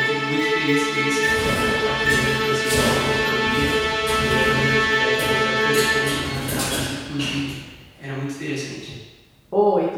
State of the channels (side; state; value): both; identical; correlation 1.00